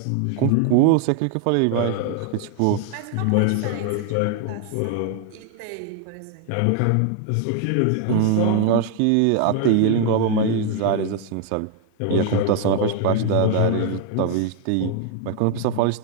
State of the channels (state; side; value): different; both; correlation 0.00